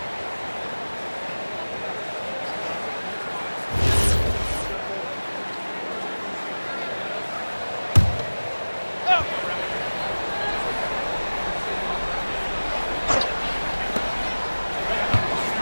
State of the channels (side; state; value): both; inverted; correlation -1.00